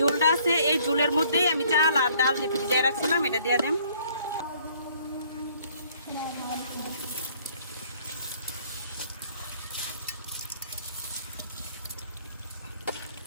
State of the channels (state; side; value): inverted; both; correlation -0.61